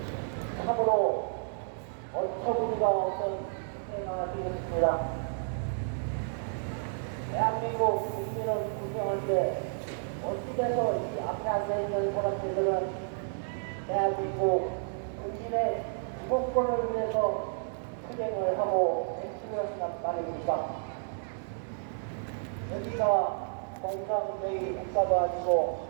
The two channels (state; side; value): silent; left; 57 dB below the other